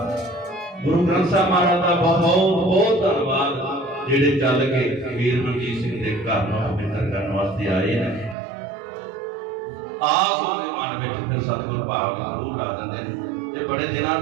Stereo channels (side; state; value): left; drops out; at 8.3 s